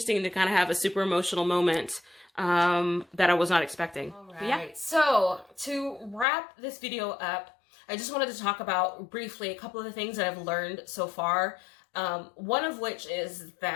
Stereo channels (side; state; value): right; drops out; at 6.2 s